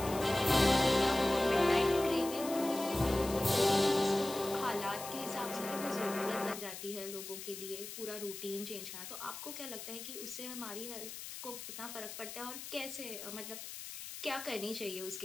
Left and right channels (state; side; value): noise; left; hiss, 10 dB below the sound